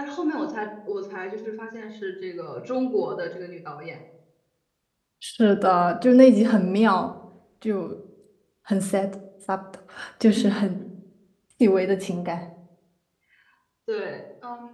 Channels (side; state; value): both; identical; correlation 1.00